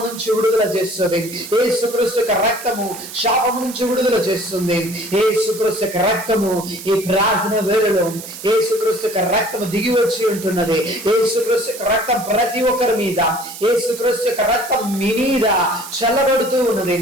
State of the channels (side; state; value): right; noise; hiss, 12 dB below the sound